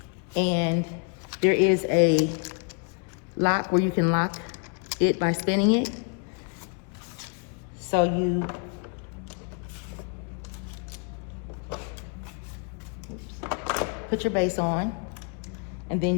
and there is a lock where you can lock it by spinning it. So you put your base on, and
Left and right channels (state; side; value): quieter; right; 37.6 dB